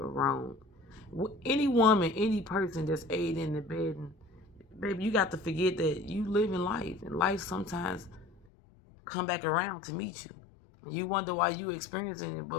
Any woman, any person that's aiding in the bed, and baby, you got to forget that you live in life, and life sometimes come back around to meet you. You wonder why you experiencing it,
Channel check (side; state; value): right; drops out; at 8.5 s